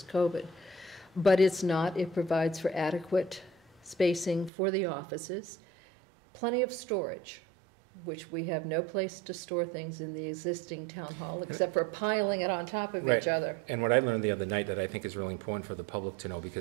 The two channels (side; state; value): left; drops out; at 4.5 s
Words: COVID. But it's not. It provides for adequate spacing for the offices, plenty of storage, which we have no place to store things in the existing town hall except for piling it on top of each other. And what I learned the other night that I think is really important for the public to know,